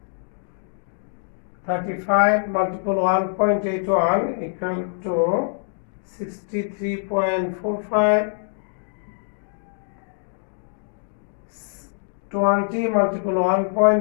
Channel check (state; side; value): silent; right; digital silence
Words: 35 multiple 1.81 equal to 63.45. 20 multiple